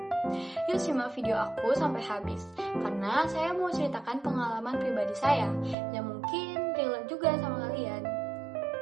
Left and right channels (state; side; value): drops out; left; at 5.8 s